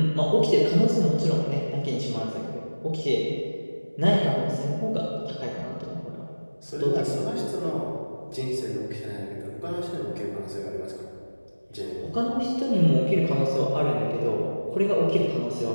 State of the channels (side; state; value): both; inverted; correlation -1.00